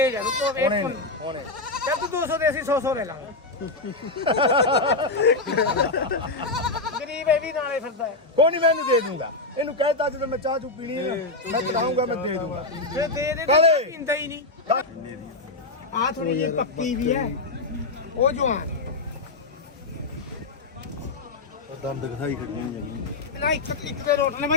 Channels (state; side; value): quieter; right; 3.2 dB